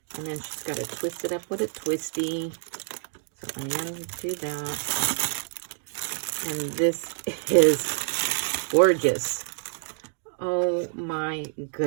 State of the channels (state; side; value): silent; left; digital silence